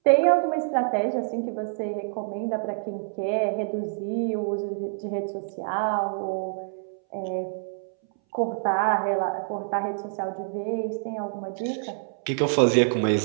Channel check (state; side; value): silent; left; 61 dB below the other